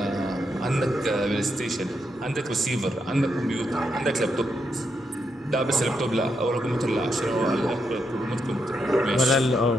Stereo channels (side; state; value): both; normal; correlation 0.81